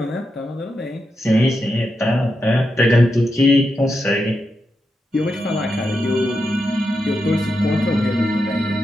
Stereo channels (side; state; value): both; normal; correlation 0.86